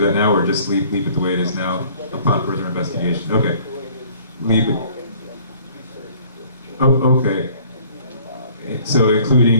that now, or just leave it the way it is now upon further investigation? Okay, leave it. Oh, okay. So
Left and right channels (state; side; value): inverted; both; correlation -0.55